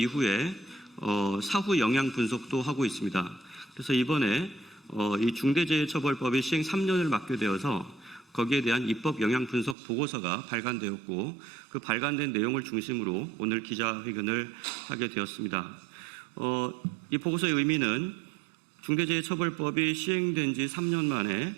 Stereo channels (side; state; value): left; drops out; at 9.8 s